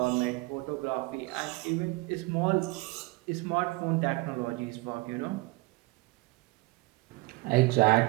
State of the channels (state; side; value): quieter; left; 22.6 dB